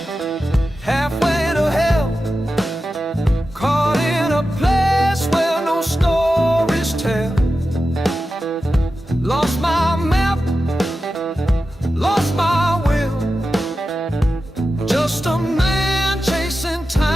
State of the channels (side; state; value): both; normal; correlation 0.92